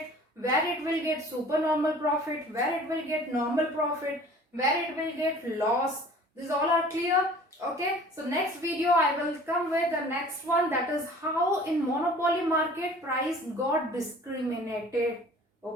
where it will get supernormal profit, where it will get normal profit, where it will get loss. These all are clear. Okay. So next video I will come with the next one, that is how in monopoly market price got discriminated.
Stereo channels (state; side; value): normal; both; correlation 0.47